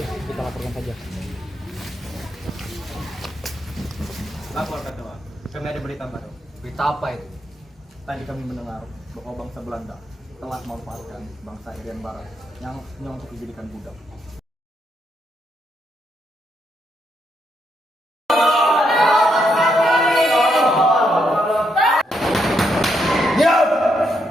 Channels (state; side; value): normal; both; correlation 0.78